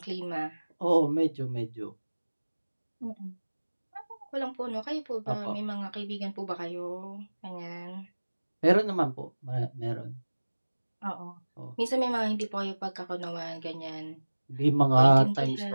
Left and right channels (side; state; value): both; inverted; correlation -1.00